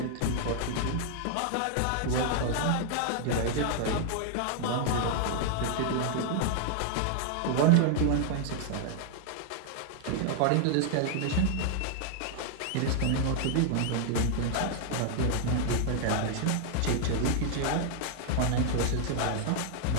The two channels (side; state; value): both; different; correlation 0.00